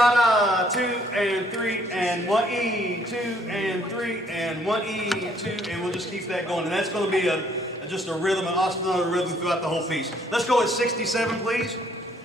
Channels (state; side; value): normal; both; correlation 0.65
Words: da, 2 and 3 and 1 E, 2 and 3 and 1 E, 2, and we'll just keep that going. And that's going to be just a rhythm, an ostinato rhythm throughout the whole piece. Let's go at 67, please.